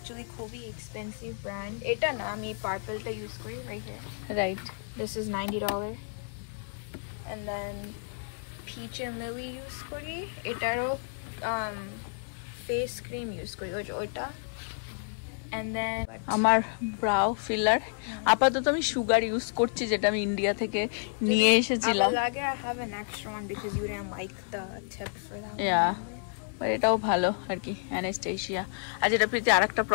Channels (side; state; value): right; silent; 58 dB below the other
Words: খুবই এক্সপেন্সিভ ব্র্যান্ড। এটা না, আমি পার্পলটা ইউজ করি right here. Right, this is $90 and then Peach and Lily use করি, এটারও ফেস ক্রিম ইউজ করি ওইটা। And then আমার ব্রাউ ফিলার আপাতত আমি সুগার ইউজ করছি, যেটা আমি ইন্ডিয়া থেকে নিয়ে এসেছিলাম। লাগে I have an extra one because you didn't like the tip for that. Yeah, but এটাও ভালো আর কি, অ্যানাস্টেশিয়া। আর যেটা প্রীতি আরেকটা